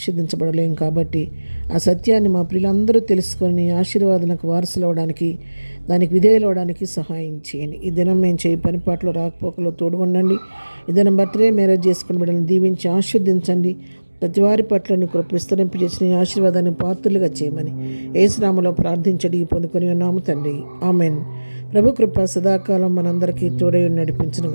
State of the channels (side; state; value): both; inverted; correlation -1.00